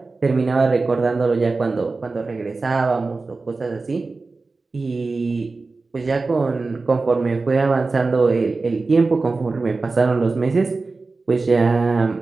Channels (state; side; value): quieter; left; 3.8 dB